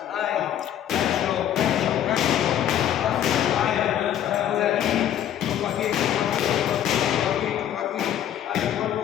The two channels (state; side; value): quieter; right; 10.7 dB